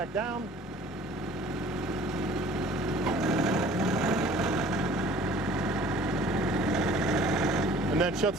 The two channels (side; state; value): both; normal; correlation 0.50